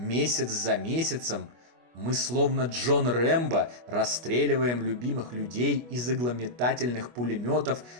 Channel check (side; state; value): left; late; 25 ms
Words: за месяцем, мы словно Джон Рэмбо расстреливаем любимых людей из иглометательных пулеметов